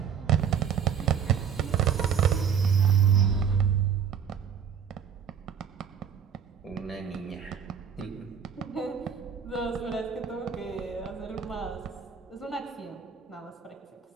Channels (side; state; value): left; quieter; 7.6 dB